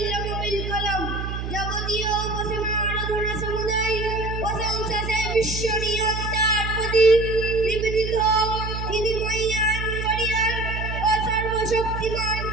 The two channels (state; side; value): noise; right; hum, 5 dB below the sound